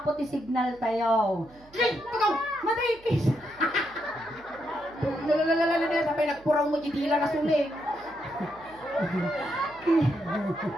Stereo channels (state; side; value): noise; right; hum, 26 dB below the sound